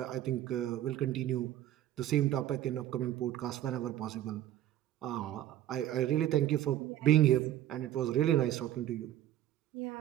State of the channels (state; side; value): quieter; left; 12.8 dB